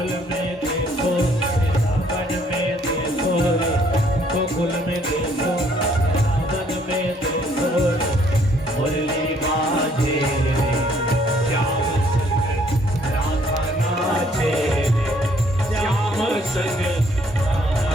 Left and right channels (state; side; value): normal; both; correlation 0.64